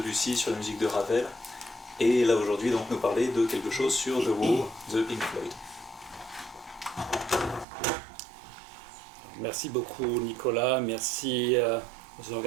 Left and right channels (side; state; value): left; drops out; at 7.7 s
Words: sur la musique de Ravel, et là aujourd'hui donc nous parler de quelque chose sur The Wall de Pink Floyd. Merci beaucoup Nicolas, merci aux